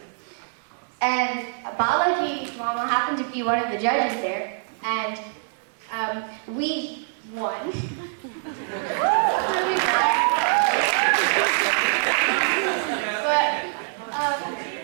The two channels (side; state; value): left; silent; 62 dB below the other